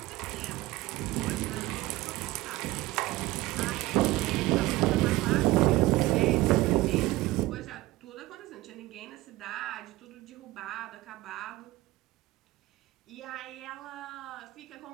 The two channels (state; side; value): quieter; left; 18.2 dB